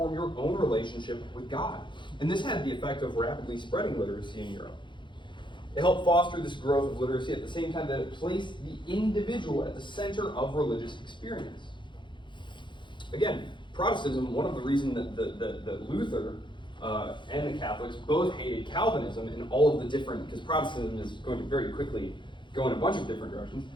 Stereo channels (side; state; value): right; late; 0.23 ms